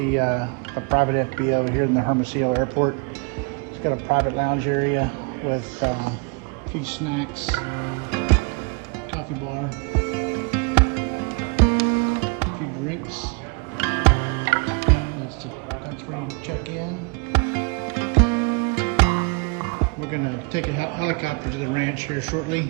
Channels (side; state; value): left; quieter; 33.4 dB